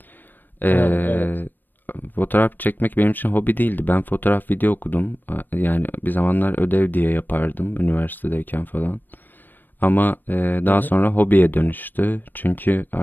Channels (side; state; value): right; late; 0.091 ms